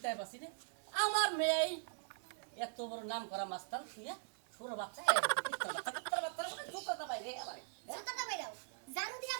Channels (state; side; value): silent; left; 50 dB below the other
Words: পাচ্ছি রে আমার মেয়ে এত বড় নাম করা মাস্টার তুই ছোট বাচ্চা বাইরে আবার জুতাটা বাইরাও জারু দিয়া